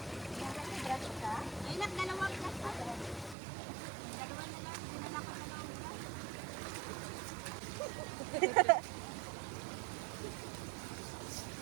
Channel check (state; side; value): drops out; left; at 3.4 s